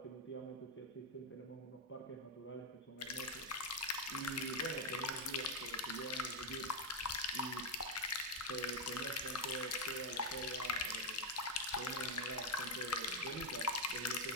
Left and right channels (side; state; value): both; normal; correlation 0.03